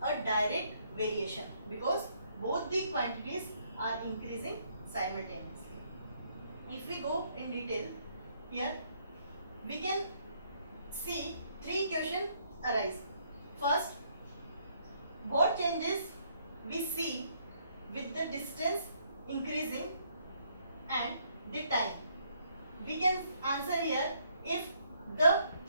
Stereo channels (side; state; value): both; inverted; correlation -0.70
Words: a direct variation because both the quantities are increasing simultaneously. If we go in detail, here we can see three questions arise. First, what changes we see with the distance increasing and the time? We can answer here if the